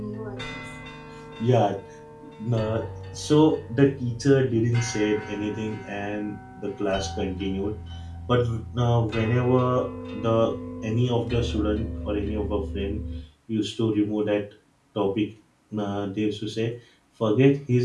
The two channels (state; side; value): identical; both; correlation 1.00